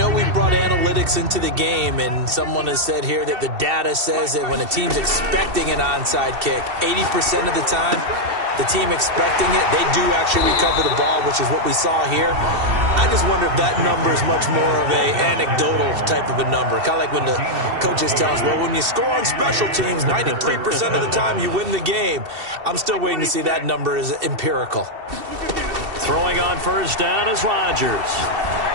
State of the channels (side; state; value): left; late; 2.7 ms